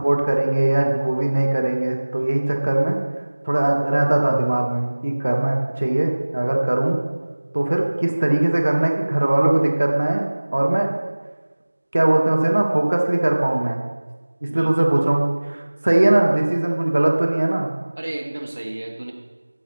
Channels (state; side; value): inverted; both; correlation -1.00